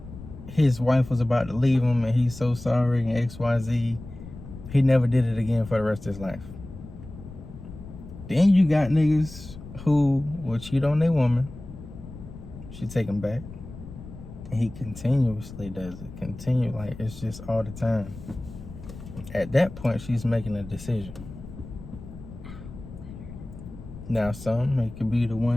his wife was about to leave him and he's so sorry and XYZ, he never did it again for the rest of his life. Then you got niggas who will cheat on their woman. She take him back. And he continuously does it. Like it's just all the time. At that point, she's making a decision. Now, it could be the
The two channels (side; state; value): left; noise; rumble, 14 dB below the sound